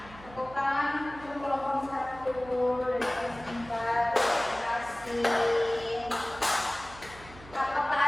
lakukan untuk kelompok 1 dari kelas 4. Terima kasih.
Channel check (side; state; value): right; noise; hum, 19 dB below the sound